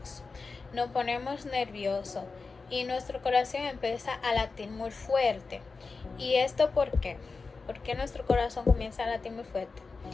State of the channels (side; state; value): right; quieter; 4.3 dB